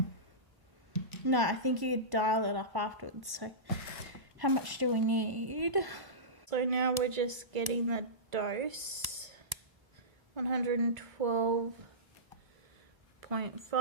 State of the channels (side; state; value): left; late; 1.1 ms